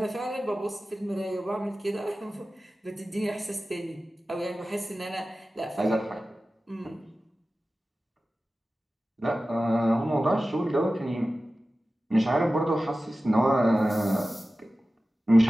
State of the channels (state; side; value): normal; both; correlation 0.95